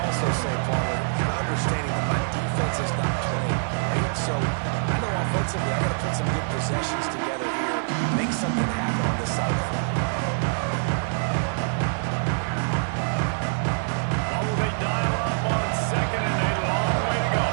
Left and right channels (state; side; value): silent; left; digital silence